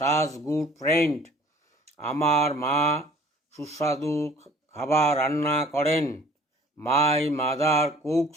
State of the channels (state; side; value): normal; both; correlation 0.52